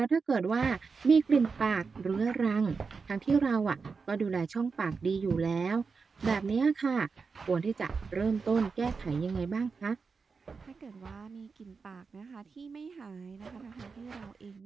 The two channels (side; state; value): left; quieter; 4.9 dB